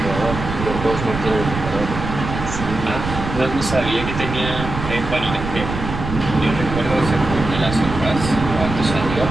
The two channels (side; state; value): right; noise; rumble, 6 dB below the sound